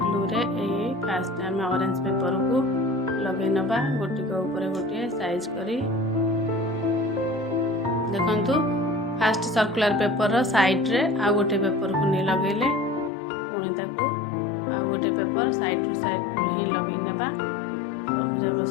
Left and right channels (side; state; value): right; drops out; at 13.1 s